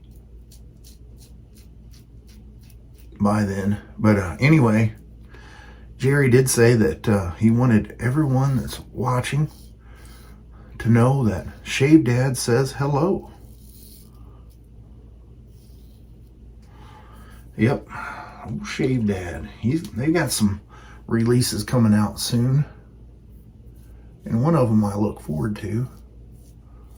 by then. But anyway, Jerry did say that he wanted everyone that's watching to know that Shave Dad says hello. Yep, old Shave Dad. They got some releases coming out soon, and one of them I look forward to.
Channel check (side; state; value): both; identical; correlation 1.00